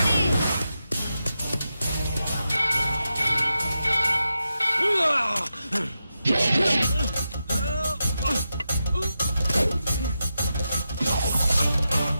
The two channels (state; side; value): inverted; both; correlation -0.89